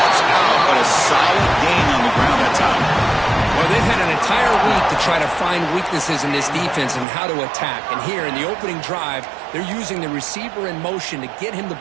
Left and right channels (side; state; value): left; drops out; at 7.1 s